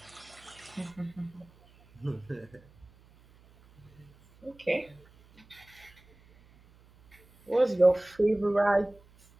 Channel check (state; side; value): noise; right; hum, 27 dB below the sound